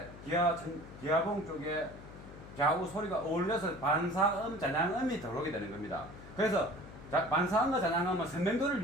기아봉 쪽에 좌우 소리가 어울려서 반사음, 잔향음이 들어오게 되는 겁니다. 그래서 반사음과 잔향음은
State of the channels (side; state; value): left; noise; hum, 16 dB below the sound